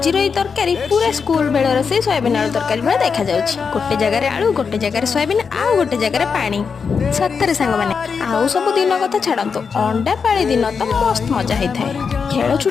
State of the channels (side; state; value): right; quieter; 5.8 dB